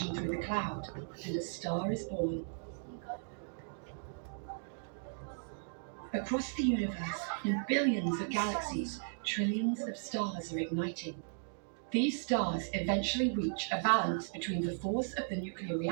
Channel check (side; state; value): left; silent; digital silence